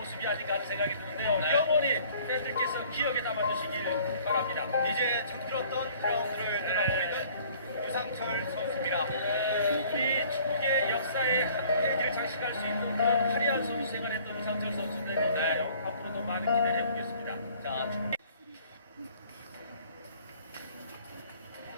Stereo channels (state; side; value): inverted; both; correlation -0.54